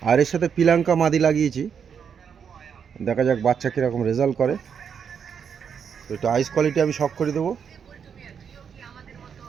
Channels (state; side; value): quieter; left; 7.2 dB